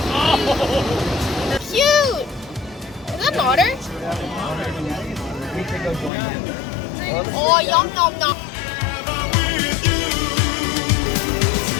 Cute! Is that water? Oh, yum, yum, yum.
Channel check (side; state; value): right; drops out; at 6.1 s